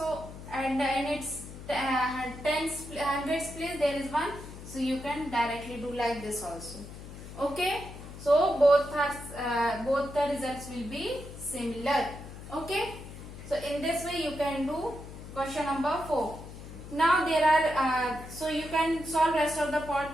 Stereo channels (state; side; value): noise; left; hum, 13 dB below the sound